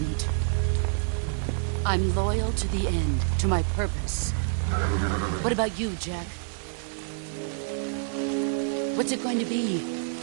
I'm loyal to the end, to my purpose. What about you, Jack? What's it going to be?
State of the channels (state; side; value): silent; left; digital silence